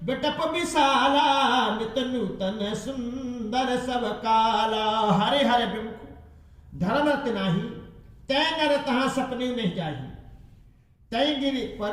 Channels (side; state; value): both; identical; correlation 1.00